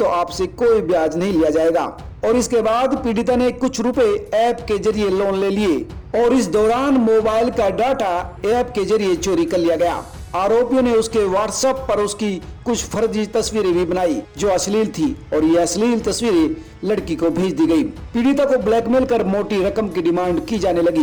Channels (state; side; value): identical; both; correlation 1.00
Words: आपसे कोई ब्याज नहीं लिया जाएगा। और इसके बाद पीड़िता ने कुछ रुपए ऐप के जरिए लोन ले लिए और इस दौरान मोबाइल का डाटा ऐप के जरिए चोरी कर लिया गया। आरोपियों ने उसके व्हाट्सएप पर उसकी कुछ फर्जी तस्वीरें भी बनाई जो अश्लील थी और ये अश्लील तस्वीरें लड़की को भेज दी गई। पीड़िता को ब्लैकमेल कर मोटी रकम की डिमांड की जाने लगी।